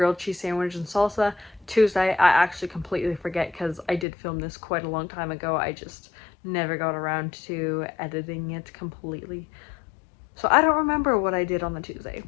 cheese sandwich and salsa. Tuesday I actually completely forget because I did film this quite a long time ago. I just never got around to editing it completely. So I don't remember what I did on the Tuesday,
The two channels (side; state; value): right; drops out; at 4.0 s